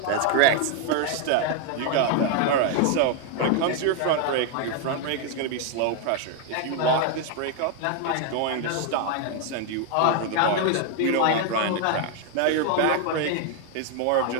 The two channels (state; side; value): different; both; correlation 0.00